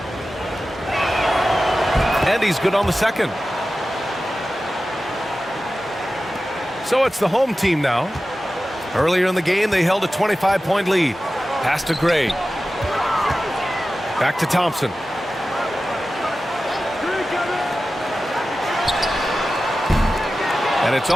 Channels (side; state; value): both; normal; correlation 0.94